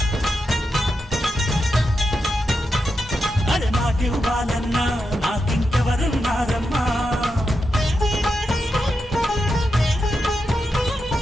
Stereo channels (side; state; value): both; normal; correlation 0.87